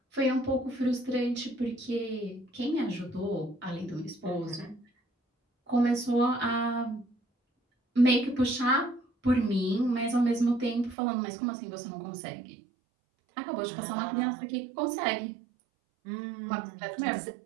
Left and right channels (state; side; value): drops out; left; at 11.0 s